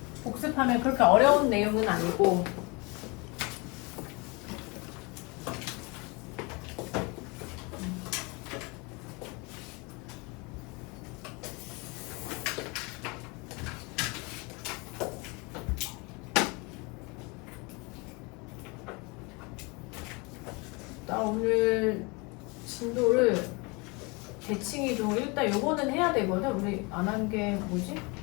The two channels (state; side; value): quieter; right; 28.3 dB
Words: 복습하면 그렇게 어려운 내용은 아니고 나 오늘 진도를 대칭이동 일단 요거는 해야 되거든. 우리 안 한 게 뭐지?